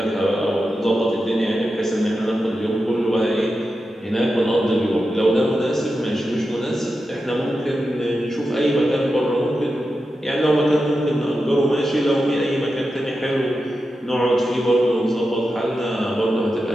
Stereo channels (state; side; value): normal; both; correlation 0.90